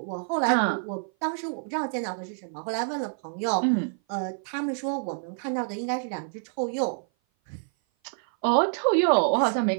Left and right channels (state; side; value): silent; left; 56 dB below the other